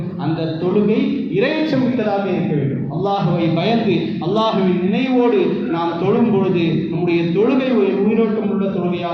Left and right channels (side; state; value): both; identical; correlation 1.00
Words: அந்த தொழுகை இறையச்சம் மிக்கதாக இருக்க வேண்டும். அல்லாஹுவை பயந்து அல்லாஹுவின் நினைவோடு நாம் தொழும் பொழுது நம்முடைய தொழுகை ஒரு உயிரோட்டம் உள்ள